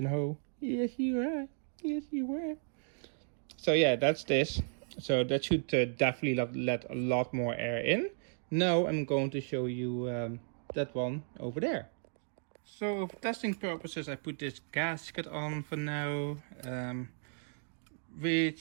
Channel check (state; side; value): silent; left; digital silence